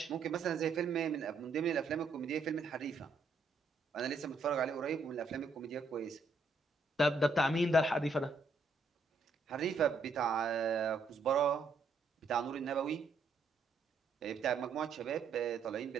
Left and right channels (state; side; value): quieter; left; 3.8 dB